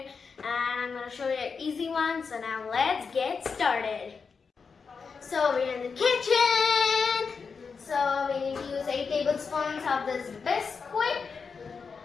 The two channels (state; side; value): quieter; right; 5.4 dB